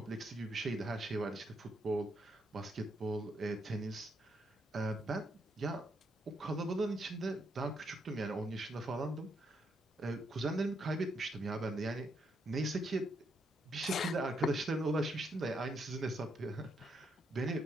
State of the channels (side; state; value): both; normal; correlation 0.77